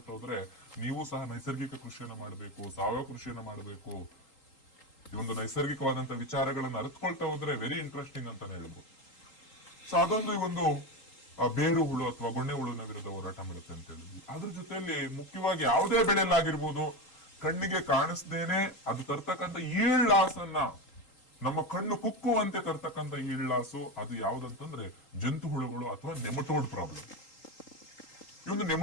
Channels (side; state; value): right; late; 3.8 ms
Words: ಹೋದ್ರೆ ನೀವು ಸಹ ನೈಸರ್ಗಿಕ ಕೃಷಿಯನ್ನ ಮಾಡಬೇಕು, ಸಾವಯವ ಕೃಷಿಯನ್ನ ಮಾಡಬೇಕು. ಈ ಒಂದು ನೈಸರ್ಗಿಕವಾದಂತ ವಿಚಾರಗಳನ್ನ ಅರಿತುಕೊಳ್ತಾ ಹೋದ್ರೆ ವೆರಿ ಇಂಟ್ರೆಸ್ಟಿಂಗ್ ಅಂತಾನೆ ಹೇಳ್ಬೋದು. ಸೊ ಅದೊಂದು ಈ ಒಂದು ಬೇರು ಹುಳು ಅಥವಾ ಗೊಣ್ಣೆ ಹುಳುವಿನ ವಿರುದ್ಧ ಹೋರಾಟ ಮಾಡುತ್ತೆ ಅಂತ ಹೇಳಿದ್ವಿ. ಅದ್ರ ಜೊತೆಯಲ್ಲಿ ಮುಖ್ಯವಾಗಿ ಯಾವುದೇ ಬೆಳೆಯಲ್ಲಾಗಿರ್ಬೋದು, ಕಣ್ಣಿಗೆ ಕಾಣಿಸ್ದೇನೆ ಅದು ತರ್ತಕ್ಕಂಥ ಈಳ್ ಲಾಸ್ ಅನ್ನ, ನಮ್ಮ ಕಣ್ಣು ಕುಕ್ಕುವಂತೆ ತರ್ತಕ್ಕಂಥ ಈಳ್ ಲಾಸು, ಅದು ಯಾವ್ದಂತಂದ್ರೆ ಜಂತು ಹುಳುಗಳು ಅಥವಾ ನೆಮಟೋಡ್ ಪ್ರಾಬ್ಲಮ್. ಈ ಒಂದು